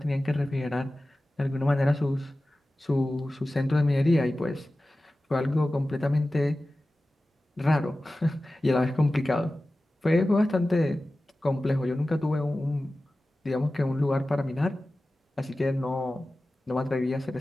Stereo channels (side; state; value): both; normal; correlation 0.96